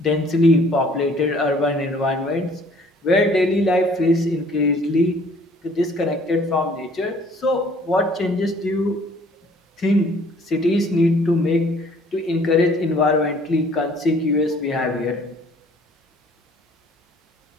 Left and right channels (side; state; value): both; normal; correlation 0.56